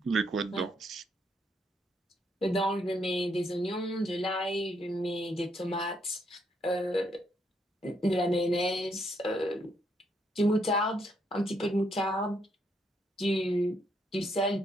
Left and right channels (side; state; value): both; normal; correlation 0.74